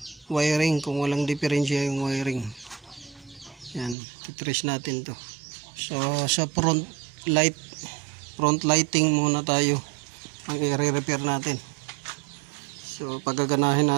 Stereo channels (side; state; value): left; drops out; at 4.0 s